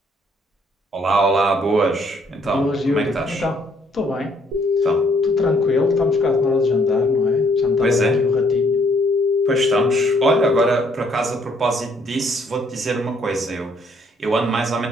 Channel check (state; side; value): normal; both; correlation 0.66